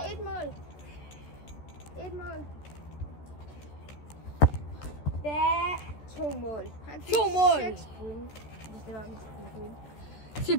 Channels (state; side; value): late; right; 14 ms